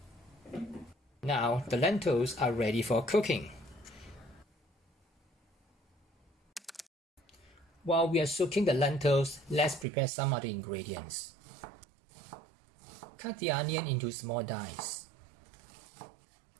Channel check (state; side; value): drops out; left; at 9.9 s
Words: Now the lentils are ready for cooking. While we are soaking the lentils, let's prepare some of the ingredients. Cut the onion into small dice.